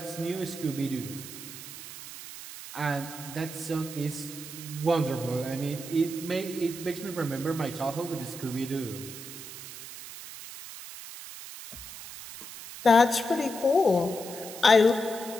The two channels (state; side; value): noise; right; hiss, 12 dB below the sound